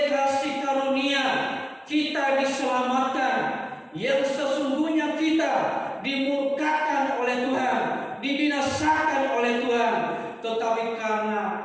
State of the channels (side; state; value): both; identical; correlation 1.00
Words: kasih karunia kita diselamatkan, yang sesungguhnya kita dimurkakan oleh Tuhan, dibinasakan oleh Tuhan, tetapi karena